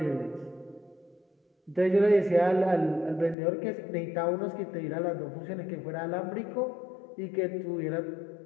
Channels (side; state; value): right; drops out; at 3.4 s